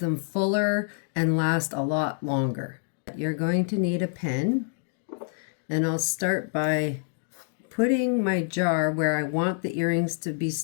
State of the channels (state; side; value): silent; right; digital silence